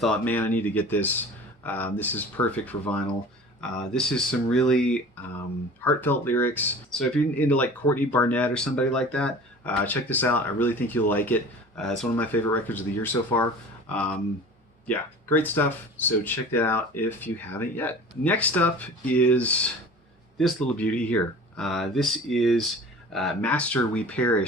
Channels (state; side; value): normal; both; correlation 0.40